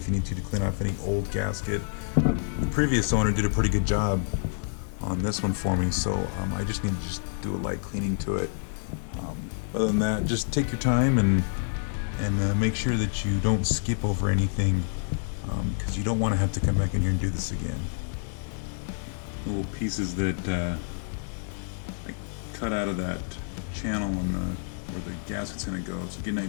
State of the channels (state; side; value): silent; right; 59 dB below the other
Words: you need to clean off any old gasket. The previous owner did a pretty good job on this one for me, so I just need to do a light cleaning to it. Other than that, just take your time and make sure that you don't skip over anything, because you don't want to have to come back in here and do this again. Little pieces that I cut out of that channel where the gasket's going to go. So get an